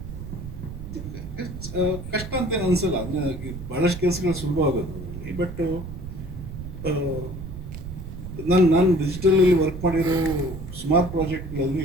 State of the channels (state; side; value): noise; right; rumble, 9 dB below the sound